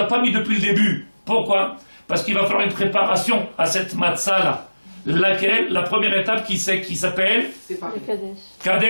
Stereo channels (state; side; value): inverted; both; correlation -1.00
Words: pas mis depuis le début. Pourquoi? Parce qu'il va falloir une préparation à cette matzah-là. Laquelle? La première étape qui s'appelle